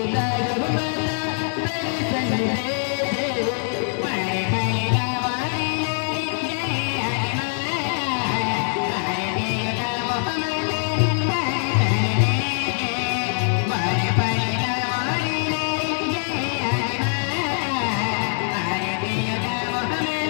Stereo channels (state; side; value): silent; right; 60 dB below the other